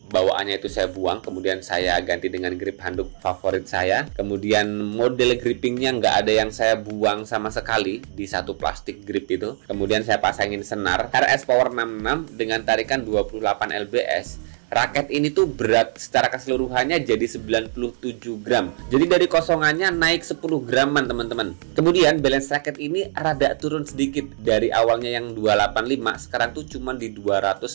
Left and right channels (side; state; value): left; silent; digital silence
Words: bawaannya itu saya buang, kemudian saya ganti dengan grip handuk favorit saya. Kemudian model grippingnya nggak ada yang saya buang sama sekali di satu plastik grip itu. Kemudian saya pasangin senar RS Power 66 dengan tarikan 28 lbs. Raket ini tuh berat secara keseluruhannya jadi 97 gram. Jadi dari kosongannya naik 10 graman teman-teman. Kemudian balance raket ini rada turun sedikit. Dari awalnya yang 285, sekarang tuh cuma di